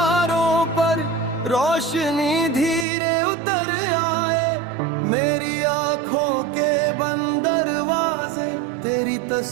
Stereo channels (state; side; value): drops out; left; at 2.9 s